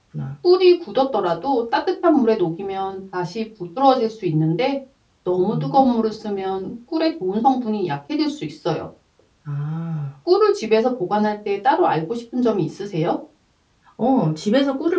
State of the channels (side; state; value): both; identical; correlation 1.00